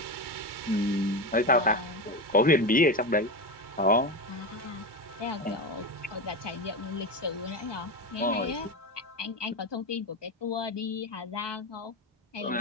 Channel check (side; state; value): both; normal; correlation 0.18